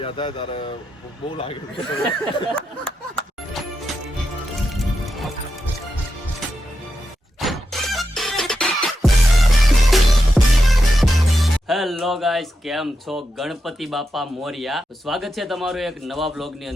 થાય ત્યારે બહુ લાગે છે. હેલો ગાઈસ, કેમ છો? ગણપતિ બાપા મોરિયા. સ્વાગત છે તમારું એક નવા વ્લોગ ની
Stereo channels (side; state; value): both; normal; correlation 0.87